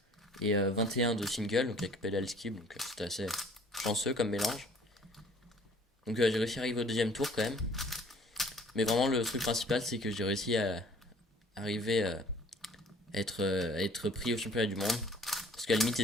et 21 de single, donc avec pedal skip, donc c'était assez chanceux comme mélange. Donc j'ai réussi à arriver au deuxième tour quand même. Mais vraiment le truc principal c'est que j'ai réussi à arriver à être pris au championnat du monde. Parce qu'à la limite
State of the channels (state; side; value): normal; both; correlation 0.54